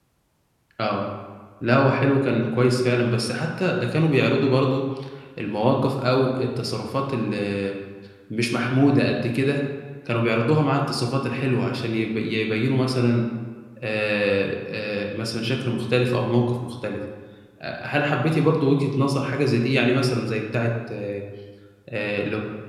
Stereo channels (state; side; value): identical; both; correlation 1.00